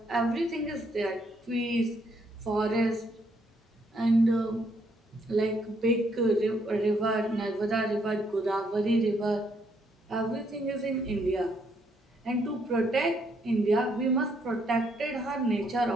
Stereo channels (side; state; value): both; normal; correlation 0.72